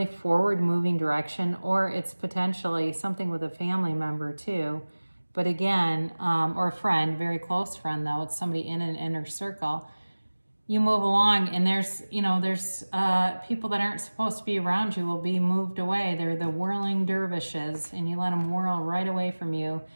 forward moving direction, or it's potentially something with a family member too. But again, or a friend, very close friend though, it's somebody in an inner circle. You move along and there's people that aren't supposed to be around you will be moved away. They're the whirling dervishes, and you let them whirl right away from you.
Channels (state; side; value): inverted; both; correlation -1.00